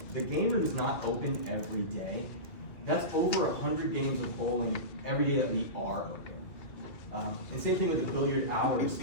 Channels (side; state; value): right; late; 2.2 ms